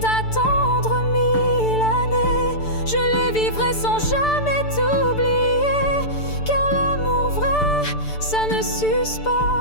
1000 années, je les vivrai sans jamais t'oublier, car l'amour vrai, ça ne s'use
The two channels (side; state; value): right; late; 6.8 ms